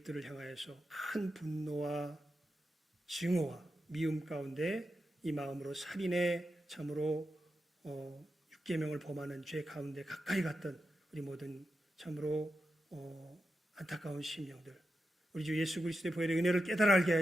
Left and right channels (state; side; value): normal; both; correlation 0.89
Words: 향하여서 큰 분노와 증오와 미움 가운데 이 마음으로 살인의 참으로 6계명을 범하는 죄 가운데 가까이 갔던 우리 모든 참으로 안타까운 심령들, 우리 주 예수 그리스도의 보혈의 은혜를 깨달아 알게